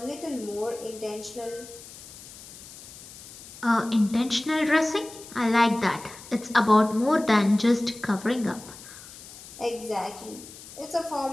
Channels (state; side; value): noise; left; hiss, 16 dB below the sound